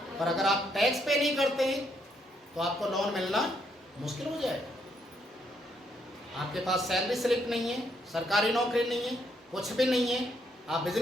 पर अगर आप टैक्स पे नहीं करते हैं तो आपको लोन मिलना मुश्किल हो जाएगा। आपके पास सैलरी स्लिप नहीं है, सरकारी नौकरी नहीं है, कुछ भी नहीं है, आप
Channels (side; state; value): both; normal; correlation 0.74